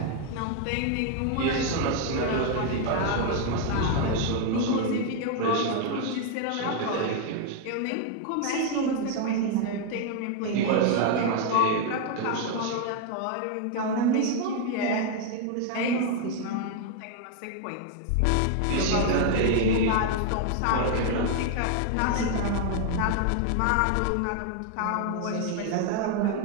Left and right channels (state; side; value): different; both; correlation 0.00